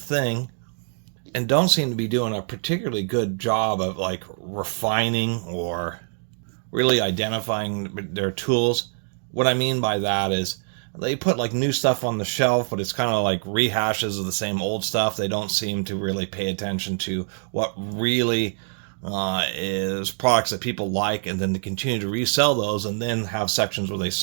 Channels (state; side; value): silent; left; digital silence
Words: and don't seem to be doing a particularly good job of like refining or really identifying their tools. What I mean by that is they put like new stuff on the shelf, but it's kind of like rehashes of the same old stuff. They don't seem to really pay attention to what really is products that people like, and then to continue to resell those and then have sections where they